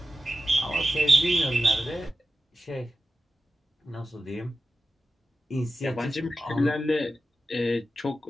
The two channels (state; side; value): normal; both; correlation 0.93